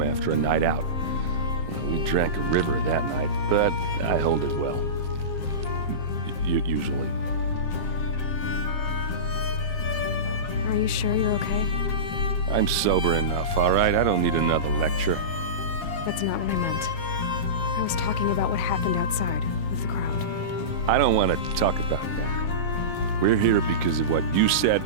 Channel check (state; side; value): late; right; 7.4 ms